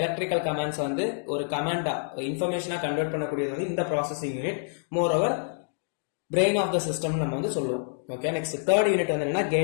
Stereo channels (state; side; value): silent; right; digital silence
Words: கமாண்ட்ஸ் வந்து ஒரு கமாண்டா இன்ஃபர்மேஷனா கன்வெர்ட் பண்ணக்கூடியது வந்து இந்த processing unit. Moreover brain of the system நம்ம வந்து சொல்லுவோம். ஓகே, நெக்ஸ்ட் தேர்ட் யூனிட் வந்து என்னன்னா